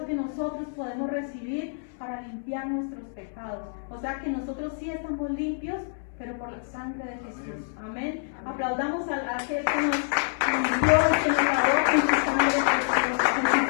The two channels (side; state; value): right; silent; 60 dB below the other